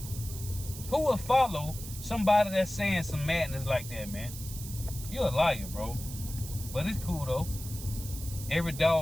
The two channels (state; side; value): noise; right; hiss, 11 dB below the sound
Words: Who will follow somebody that's saying some madness like that, man? You're a liar, bro. But it's cool, though. Every